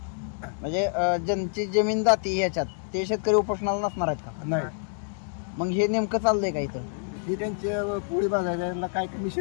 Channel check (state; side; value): silent; right; 60 dB below the other